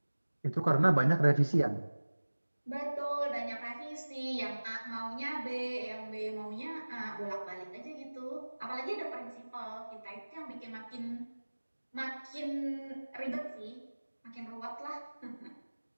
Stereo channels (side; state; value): both; inverted; correlation -1.00